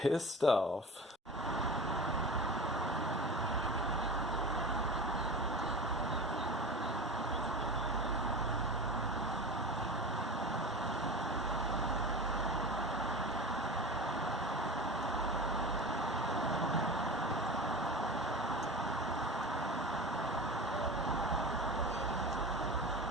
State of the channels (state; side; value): normal; both; correlation 0.30